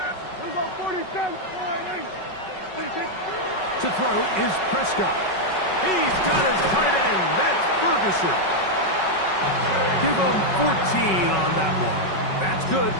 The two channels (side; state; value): right; late; 5.3 ms